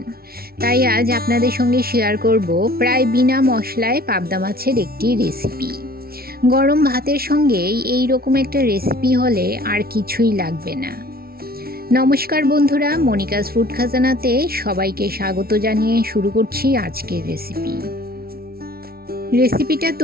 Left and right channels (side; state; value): left; late; 0.44 ms